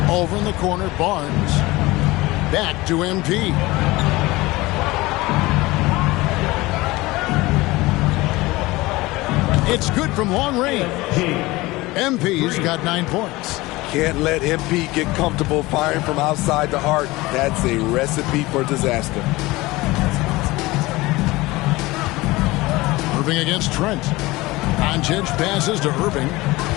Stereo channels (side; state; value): right; quieter; 20.6 dB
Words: Over in the corner, Barnes. Back to MP. It's good from long range. MP's got 9 points. Can't let MP get comfortable firing from outside the arc. That's a recipe for disaster. Irving against Trent. Doncic passes to Irving.